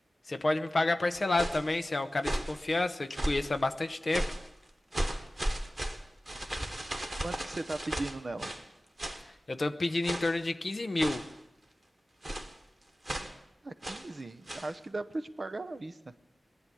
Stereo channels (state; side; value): normal; both; correlation 0.96